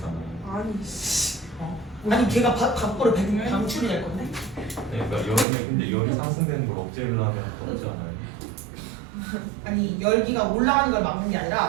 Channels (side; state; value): left; drops out; at 5.5 s